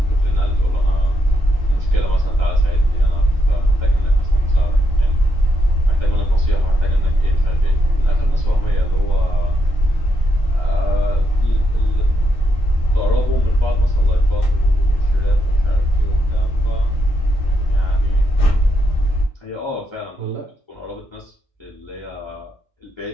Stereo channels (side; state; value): both; normal; correlation 0.80